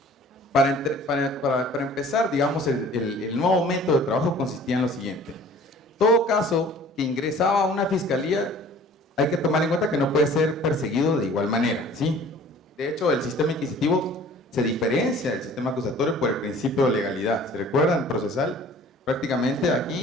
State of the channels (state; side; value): normal; both; correlation 0.49